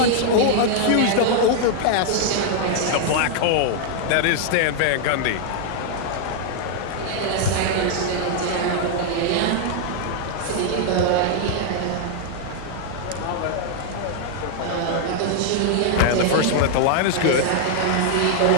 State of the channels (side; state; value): both; different; correlation 0.00